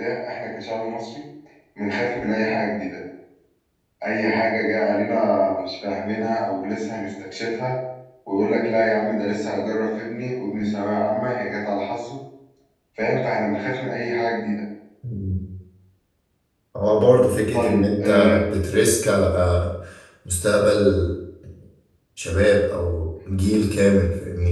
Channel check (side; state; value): both; identical; correlation 1.00